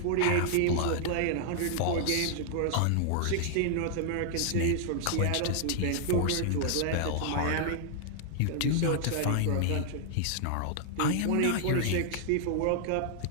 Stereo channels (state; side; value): different; both; correlation -0.01